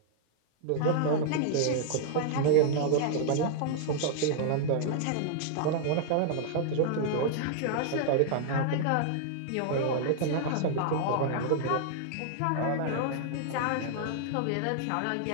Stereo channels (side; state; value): both; different; correlation -0.01